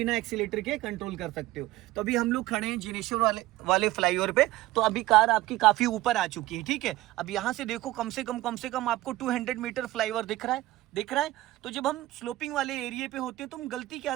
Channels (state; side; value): quieter; left; 17.2 dB